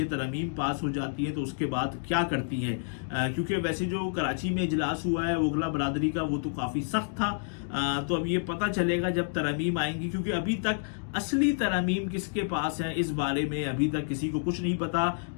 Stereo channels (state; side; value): silent; right; digital silence